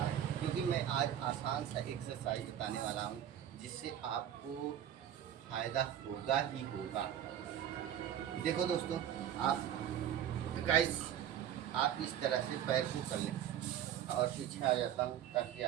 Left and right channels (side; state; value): left; quieter; 10.3 dB